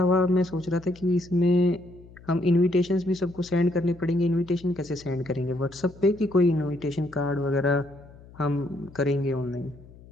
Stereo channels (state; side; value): noise; left; hum, 21 dB below the sound